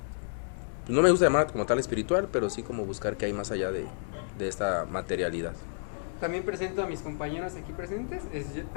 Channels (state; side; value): silent; right; 58 dB below the other